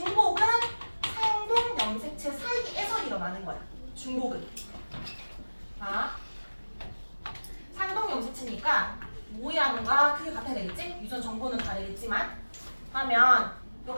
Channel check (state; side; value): inverted; both; correlation -1.00